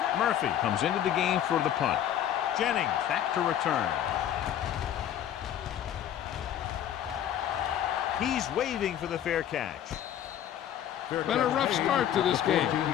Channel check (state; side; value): quieter; right; 10.6 dB